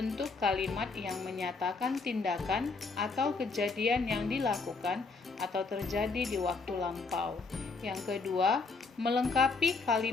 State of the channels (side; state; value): right; quieter; 4.2 dB